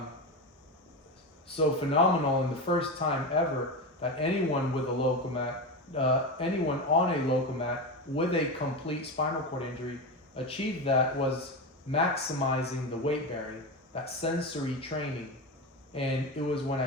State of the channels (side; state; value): both; normal; correlation 0.18